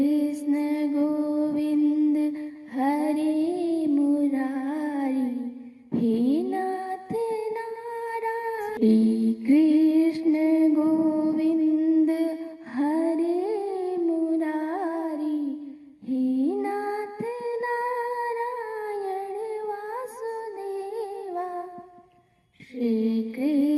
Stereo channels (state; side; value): identical; both; correlation 1.00